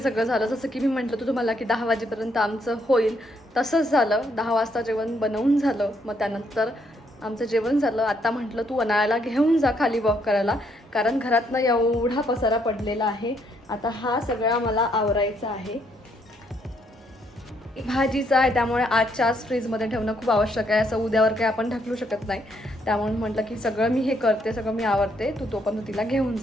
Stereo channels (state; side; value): normal; both; correlation 0.72